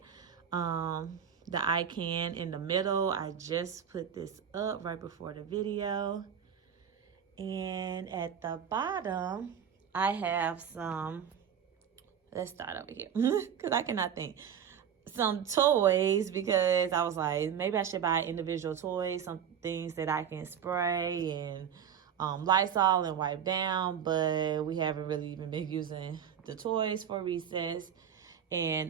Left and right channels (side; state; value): left; quieter; 8.3 dB